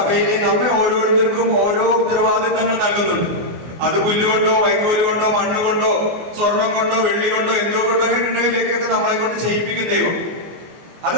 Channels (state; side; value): late; left; 24 ms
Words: നമ്മെ ഓരോരുത്തർക്കും ഓരോ ഉത്തരവാദിത്തങ്ങൾ നൽകുന്നുണ്ട്. അത് പുല്ലുകൊണ്ടോ വൈക്കോല് കൊണ്ടോ മണ്ണ് കൊണ്ടോ സ്വർണം കൊണ്ടോ വെള്ളി കൊണ്ടോ എന്തോ കൊണ്ടോ ഉണ്ടെങ്കിലേക്കൊക്കെ നമ്മളെ കൊണ്ട് ചെയ്യിപ്പിക്കും ദൈവം. അത്